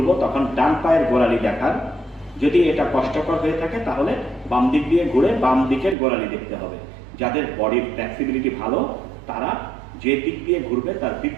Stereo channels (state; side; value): drops out; left; at 6.0 s